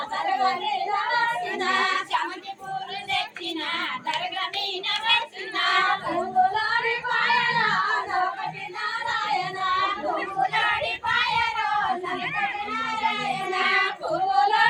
దర్గ మీద వేసిన సమితి పూలు తెచ్చిన దర్గ మీద వేసిన పూలోడి పాయలో నవకటి నారాయణ పూలోడి పాయలో నవకటి నారాయణ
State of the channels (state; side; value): identical; both; correlation 1.00